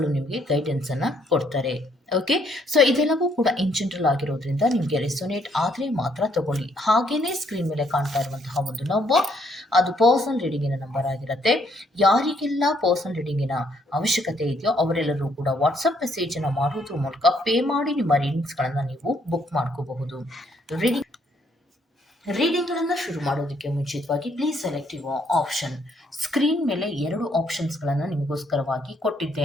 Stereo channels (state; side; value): normal; both; correlation 0.69